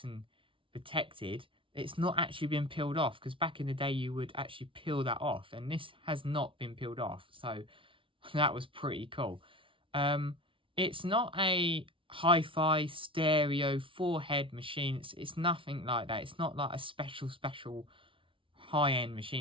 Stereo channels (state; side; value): late; left; 0.25 ms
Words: and protected. It's not actually been peeled off, because back in the day you would actually peel that off, and this has not been peeled off. So that was pretty cool. It's not a hi-fi stereo 4-head machine. It's nothing like that. It's not like a special high-end